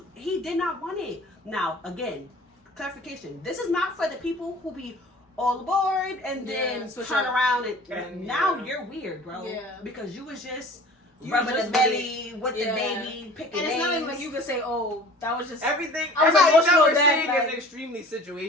he did not want it. Now, again, clarification. This is not for the people who be all aboard and then turn around and now you're weird, bro. Yeah. Because you was just rubbing the belly with the baby, picking and it's names. not even like you could say, oh, that was just everything. Everything that we're saying is extremely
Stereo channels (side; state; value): both; normal; correlation 0.46